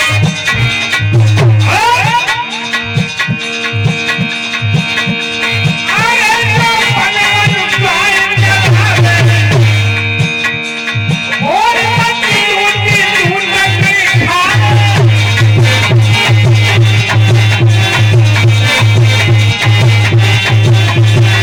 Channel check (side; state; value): both; identical; correlation 1.00